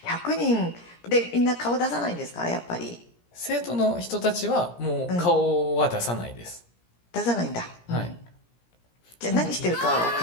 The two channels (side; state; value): right; late; 17 ms